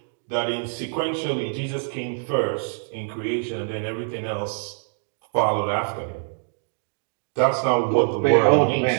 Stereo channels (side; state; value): left; silent; digital silence